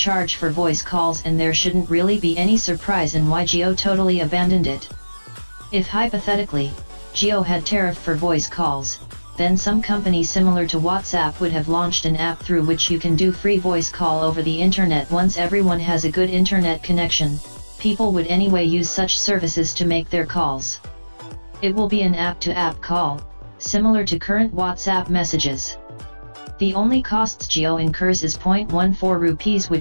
for voice calls and there shouldn't really be any surprise in why Jio totally abandoned it. If hypothetically, Jio had tariff for voice calls, then some company similar to WhatsApp would have launched an app through which you can do free voice call over the internet. Once everyone has a good internet connection, people would anyway use such services to make their calls. It will be an app-to-app call, similar to current WhatsApp messages. The only costs Jio incurs is 0.14 rupees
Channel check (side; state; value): both; inverted; correlation -1.00